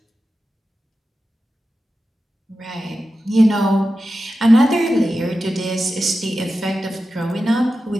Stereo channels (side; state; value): both; normal; correlation 0.92